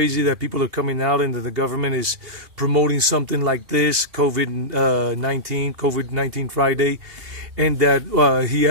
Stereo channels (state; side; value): late; left; 2.7 ms